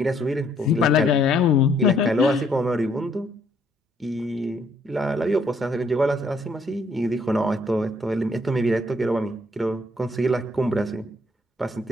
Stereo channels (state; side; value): normal; both; correlation 0.67